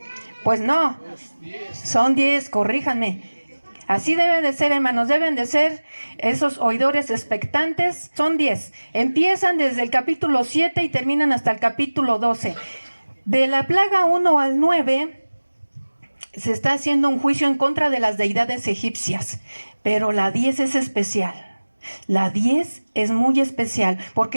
Pues no, son 10, corríjanme. Así debe de ser, hermanos, deben de ser esos oidores expectantes. Son 10. Empiezan desde el capítulo 7 y terminan hasta el capítulo 12. De la plaga 1 al 9 se está haciendo un juicio en contra de las deidades egipcias, pero la 10 es especial. La 10 es muy especial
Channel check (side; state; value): both; inverted; correlation -1.00